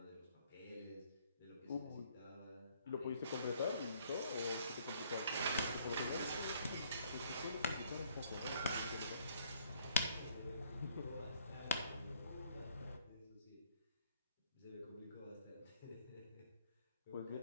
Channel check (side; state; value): both; inverted; correlation -0.63